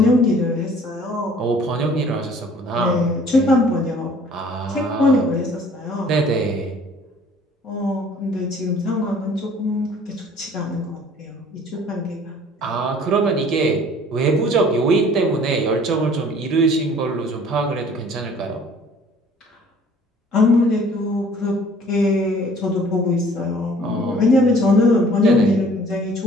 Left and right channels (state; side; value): normal; both; correlation 0.53